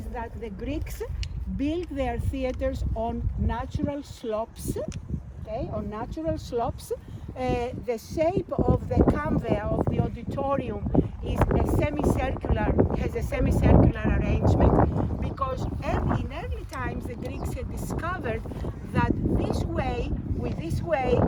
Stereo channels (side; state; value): both; identical; correlation 1.00